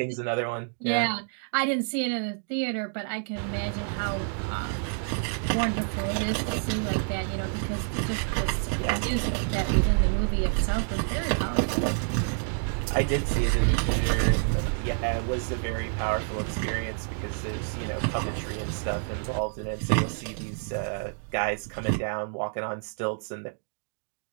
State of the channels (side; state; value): left; silent; digital silence